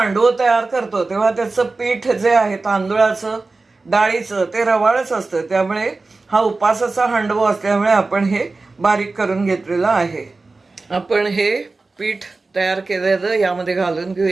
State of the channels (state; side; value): quieter; left; 3.6 dB